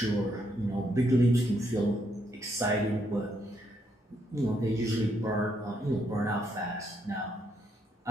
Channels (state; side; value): normal; both; correlation 0.75